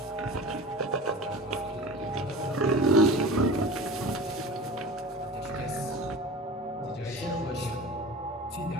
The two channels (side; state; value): both; normal; correlation 0.35